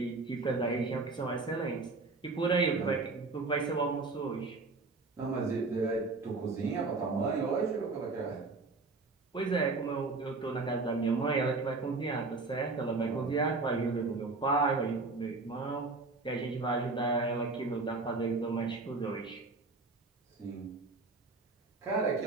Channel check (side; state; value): left; quieter; 3.7 dB